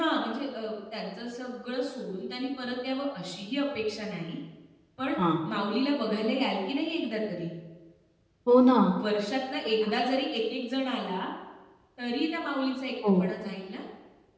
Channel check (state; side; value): identical; both; correlation 1.00